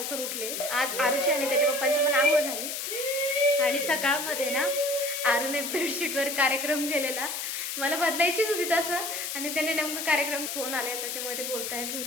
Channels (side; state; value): left; noise; hiss, 4 dB below the sound